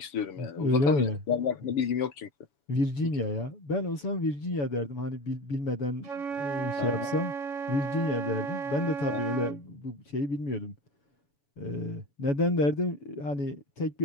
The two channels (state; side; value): late; right; 7.0 ms